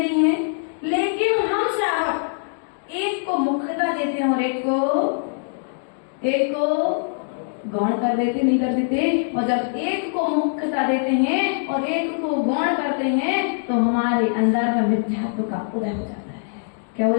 है? लेकिन हम श्रावक एक को मुख्यता देते हैं और एक को गौण कर देते, नहीं कर देते। और जब एक को मुख्यता देते हैं और एक को गौण करते हैं तो हमारे अंदर में मिथ्यात्व का उदय हो जाता है। क्या हो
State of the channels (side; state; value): right; silent; digital silence